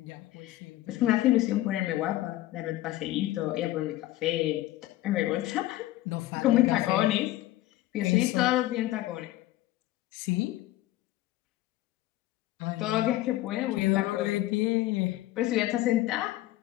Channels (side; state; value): right; quieter; 16.0 dB